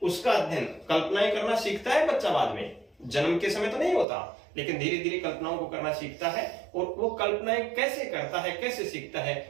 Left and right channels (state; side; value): drops out; left; at 4.0 s